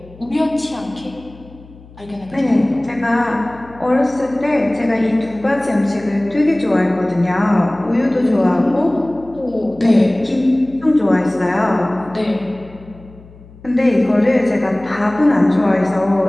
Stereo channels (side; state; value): left; noise; hum, 22 dB below the sound